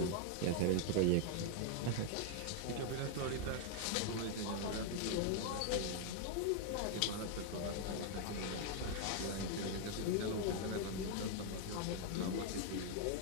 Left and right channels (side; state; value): both; different; correlation 0.00